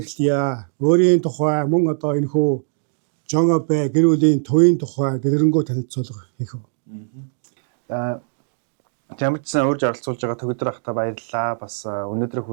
эхлэе. Өөрийн тухай мөн одоо энэхүү Жон Абе гэр бүлийн төвийн тухай дэлгэрэнгүй танилцуулга хийх үү. Жамчсан урьж оролцуулж байгаа Төгөлдөр ахта баярлалаа. Бас өнөөдрийн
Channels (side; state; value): left; silent; digital silence